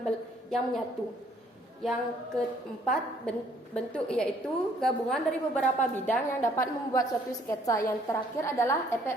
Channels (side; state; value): both; normal; correlation 0.62